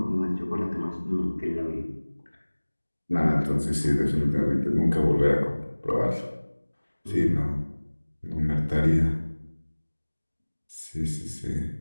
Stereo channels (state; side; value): inverted; both; correlation -1.00